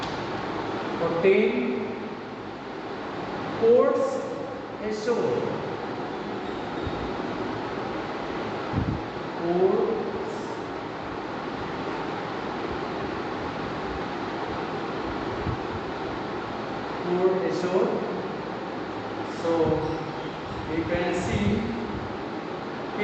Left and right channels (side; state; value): both; identical; correlation 1.00